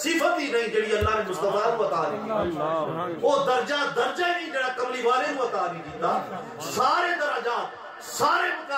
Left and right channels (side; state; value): both; identical; correlation 1.00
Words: ہی نہیں جڑی اللہ نے مصطفیٰ کو عطا نہیں کی، او درجہ ہی نہیں جڑا کملی والے کو عطا نہیں کیتا، سارے درجات، سارے